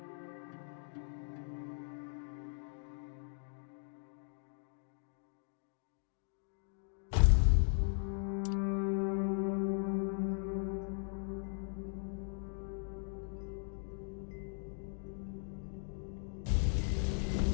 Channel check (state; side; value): silent; right; digital silence